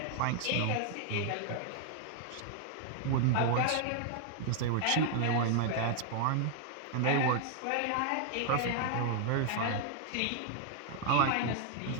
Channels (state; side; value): different; both; correlation 0.00